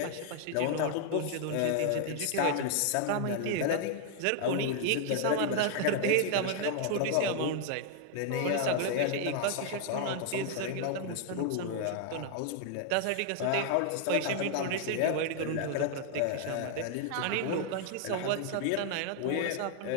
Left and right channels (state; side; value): different; both; correlation 0.00